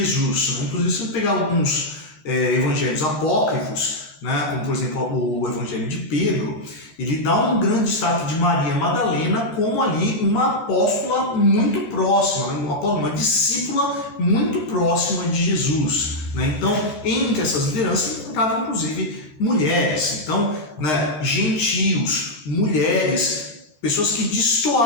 Né? Inclusive, se você pegar alguns evangelhos apócrifos, né? Como por exemplo o Evangelho de Pedro, ele dá um grande destaque de Maria Madalena como ali uma apóstola muito próxima, né? Uma discípula muito próxima de Jesus, né? Então, entre essas lideranças encontravam inclusive mulheres, então, né, gentios, mulheres, pessoas que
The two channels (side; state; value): right; late; 14 ms